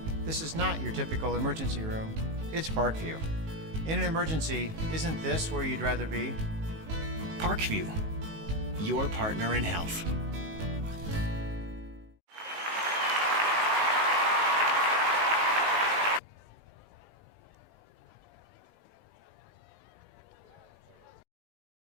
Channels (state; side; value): late; left; 19 ms